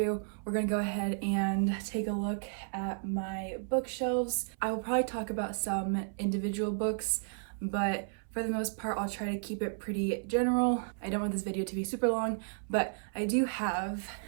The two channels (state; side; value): silent; left; 56 dB below the other